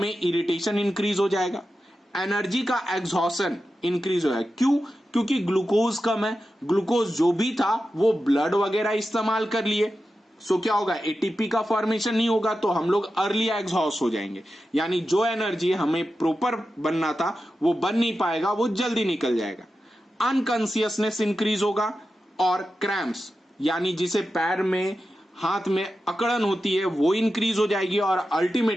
इरिटेशन इंक्रीज हो जाएगा, एनर्जी का एग्जॉशन इंक्रीज हो जाएगा। क्यों, क्योंकि ग्लूकोज कम है, ग्लूकोज जो भी था वो ब्लड वगैरह इस्तेमाल कर लिए। सो क्या होगा, एटीपी का फॉर्मेशन नहीं होगा तो हम लोग अर्ली एग्जॉस्ट हो जाएंगे, यानी जो एनर्जी हमें प्रॉपर बनना था वो बन नहीं पाएगा, वो जल्दी निकल जाएगा। अनकॉन्शियसनेस इंक्रीज होगा, और क्रैम्प्स यानी जिसे पैर में हाथ में अकड़न होती है वो इंक्रीज हो जाएगी, और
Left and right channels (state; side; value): normal; both; correlation 0.91